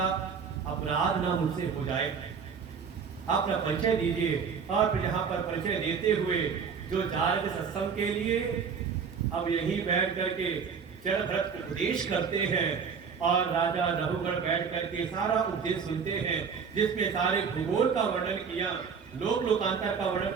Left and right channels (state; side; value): quieter; left; 6.2 dB